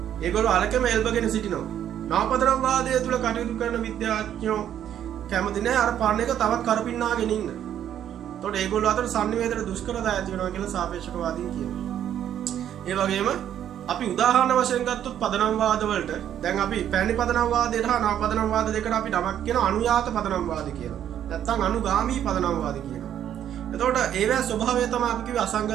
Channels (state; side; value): quieter; left; 10.3 dB